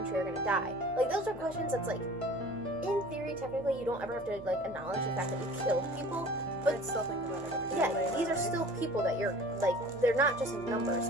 are gonna die. Like those are questions that's like, in theory, technically, you don't ever have to like acknowledge the fact that you killed people, but I'd still think about it every yeah, day. these are still people that you're like. They're not just numbers.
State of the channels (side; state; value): both; normal; correlation 0.45